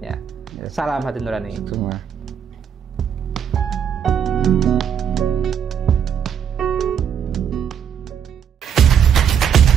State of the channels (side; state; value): left; quieter; 8.2 dB